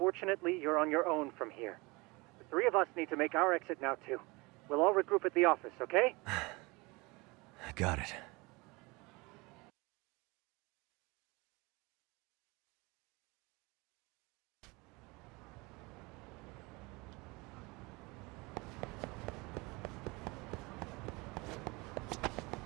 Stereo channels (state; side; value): quieter; left; 25.2 dB